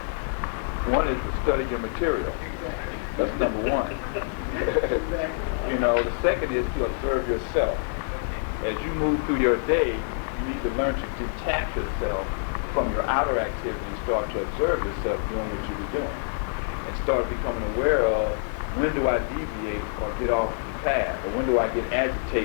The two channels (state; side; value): silent; right; digital silence